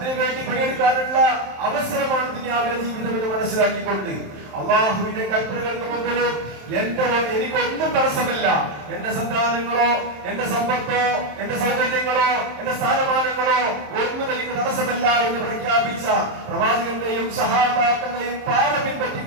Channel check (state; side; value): late; left; 27 ms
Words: പണിയെടുക്കാനുള്ള അവസരമാണ് ദുനിയാവിലെ ജീവിതം എന്ന് മനസ്സിലാക്കിക്കൊണ്ട് അള്ളാഹുവിന്റെ കൽപ്പനകൾക്ക് മുമ്പിൽ എനിക്കൊന്നും തടസ്സമല്ല. എന്റെ സന്താനങ്ങളോ, എന്റെ സമ്പത്തോ, എന്റെ സൗകര്യങ്ങളോ, എന്റെ സ്ഥാനമാനങ്ങളോ ഒന്നും എനിക്ക് തടസ്സമല്ല എന്ന് പ്രഖ്യാപിച്ച പ്രവാചകന്റെയും സഹാബാക്കളുടെയും പാത